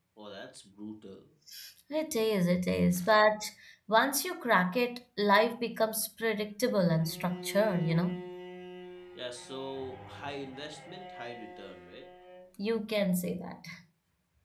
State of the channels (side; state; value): both; identical; correlation 1.00